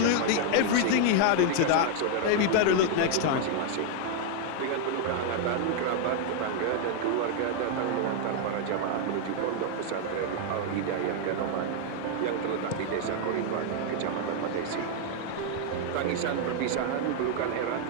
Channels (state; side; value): different; both; correlation 0.00